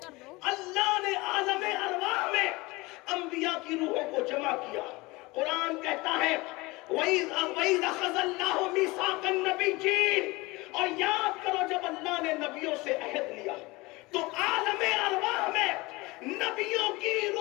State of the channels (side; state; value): right; quieter; 22.7 dB